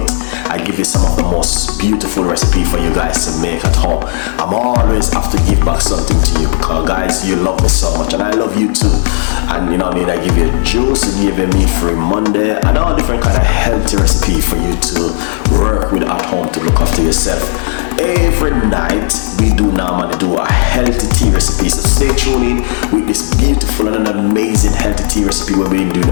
I give you some of the most beautiful recipe for you guys to make at home. I'm always have to give back something to you because guys, you love me so much and I love you too. And you know what I mean, I give you juice, I give you meat-free Monday and all different kind of healthy recipe for you to work with at home to look after yourself. Every night we do normally do a healthy tea recipe, so stay tuned in with this beautiful and an amazing healthy tea recipe where we do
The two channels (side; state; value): right; silent; 69 dB below the other